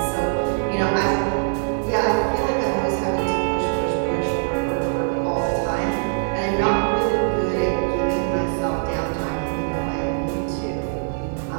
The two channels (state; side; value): silent; left; 64 dB below the other